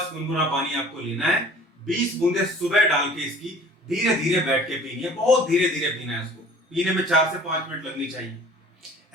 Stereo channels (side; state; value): both; normal; correlation 0.48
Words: गुनगुना पानी आपको लेना है, 20 बूंदे सुबह डाल के इसकी धीरे धीरे बैठ के पीनी है, बहुत धीरे धीरे पीना है। इसको पीने में 4 से 5 मिनट लगनी चाहिए।